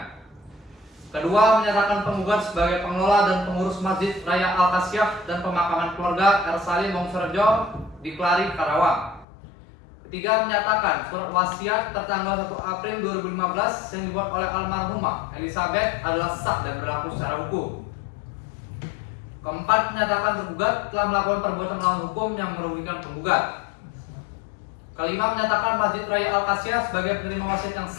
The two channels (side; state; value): right; drops out; at 9.2 s